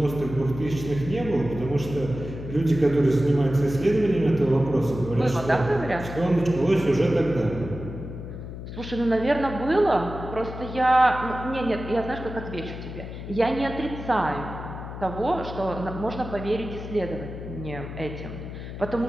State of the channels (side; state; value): left; noise; hum, 10 dB below the sound